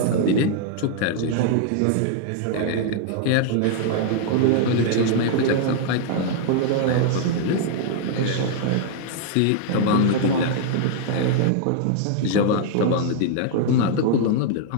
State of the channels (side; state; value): both; different; correlation -0.01